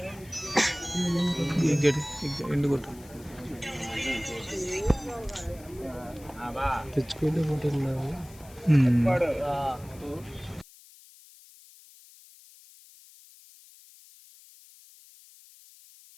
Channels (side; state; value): left; noise; hiss, 23 dB below the sound